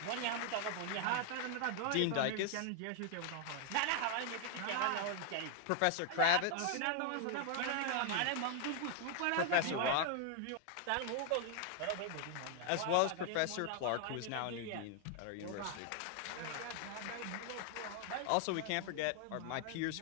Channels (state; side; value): different; both; correlation 0.00